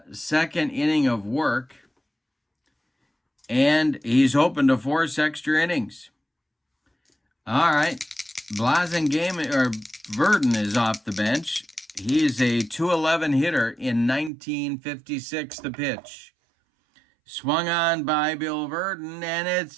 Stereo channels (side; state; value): left; drops out; at 14.3 s